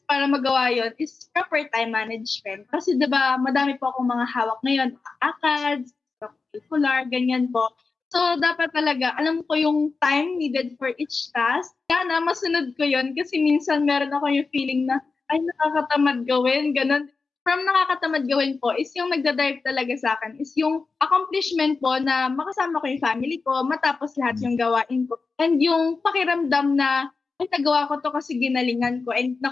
para magawa yon is proper time management. Kasi diba, madami po akong mga hawak ngayon, ACADS, curricular, ganyan po. So, dapat talaga, alam ko yung time needed for each task. Sana, masunod ko yon kasi minsan meron ako yung feeling na, ay, nakakatamad gawin, ganun. From nakakatamad gawin po is yung nagdadrive talaga sa akin is yung accomplishment po na makasama ko yung family ko, matapos lahat yung gawain ko. And yung pakiramdam na, ay, nagawa ko to kasi ginalingan ko and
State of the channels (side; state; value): right; quieter; 4.3 dB